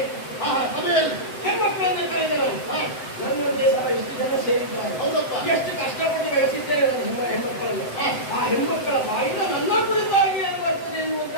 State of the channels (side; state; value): right; late; 7.8 ms